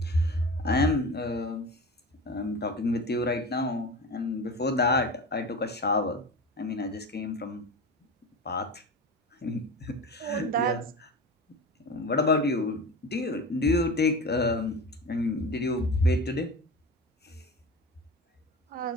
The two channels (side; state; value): both; normal; correlation 0.30